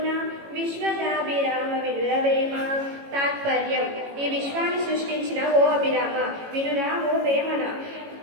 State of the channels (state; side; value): late; left; 18 ms